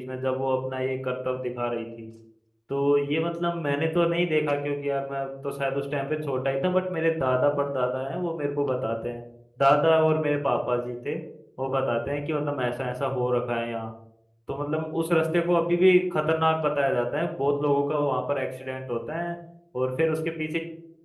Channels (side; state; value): both; identical; correlation 1.00